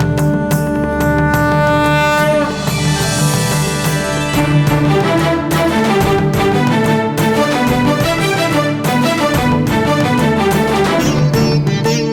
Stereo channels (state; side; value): identical; both; correlation 1.00